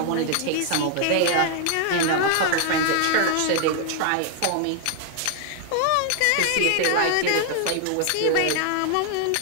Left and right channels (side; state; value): both; different; correlation 0.00